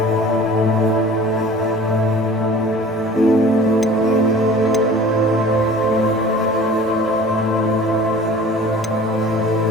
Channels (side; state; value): both; normal; correlation 0.44